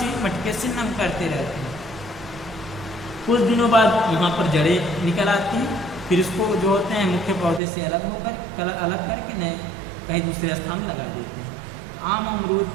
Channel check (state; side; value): drops out; left; at 7.6 s